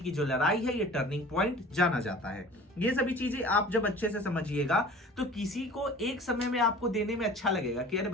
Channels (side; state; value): both; normal; correlation 0.43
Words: जो लड़ाई है, ये टर्निंग पॉइंट जाना जाता है। ये सभी चीजें आप जब अच्छे से समझिएगा तो किसी को एक समय में आपको देने में अच्छा लगेगा कि अरे